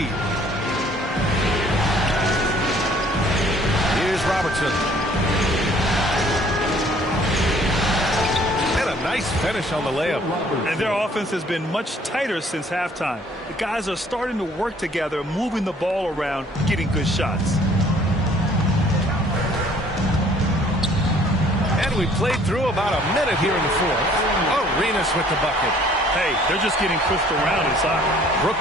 Here's Robertson. Nice finish on the layup. And their offense has been much tighter since halftime. The guys are starting to work together, moving the ball around, getting good shots. And we played through about a minute here in the 4th. Arenas with the bucket. Hey, they're just getting pushed around inside.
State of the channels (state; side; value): normal; both; correlation 0.57